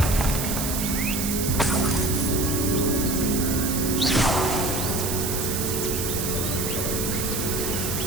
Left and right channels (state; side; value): noise; right; hiss, 3 dB below the sound